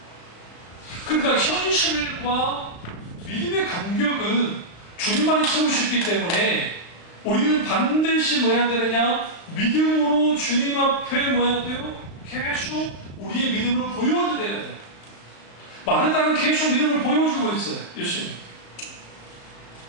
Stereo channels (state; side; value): late; right; 35 ms